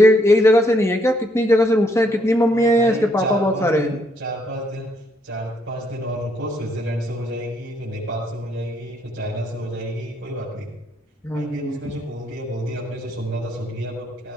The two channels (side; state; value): both; normal; correlation 0.72